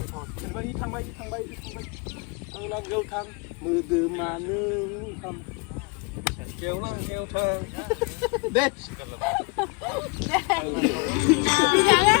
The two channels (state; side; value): quieter; right; 29.5 dB